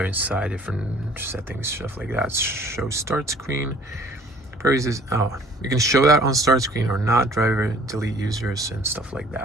inside, different settings, stuff like that. Show start screen. You can show that on start screen or not. Driver, delete users, and stuff like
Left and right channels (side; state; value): both; normal; correlation 0.54